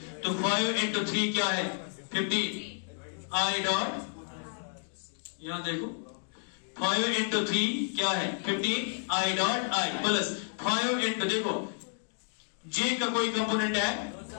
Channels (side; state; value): right; silent; 57 dB below the other